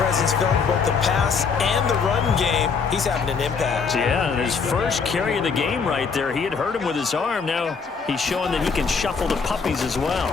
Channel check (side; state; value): right; quieter; 5.4 dB